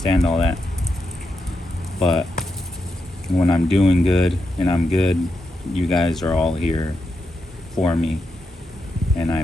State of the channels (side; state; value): both; normal; correlation 0.86